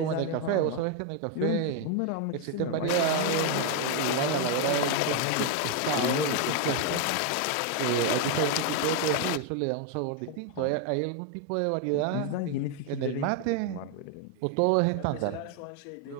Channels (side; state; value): both; different; correlation 0.01